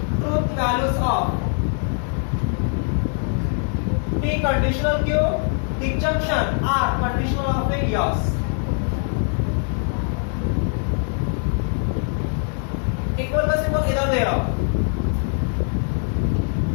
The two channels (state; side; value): silent; right; 55 dB below the other